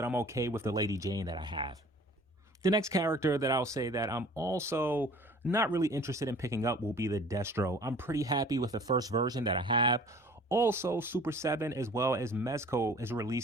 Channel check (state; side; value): normal; both; correlation 0.48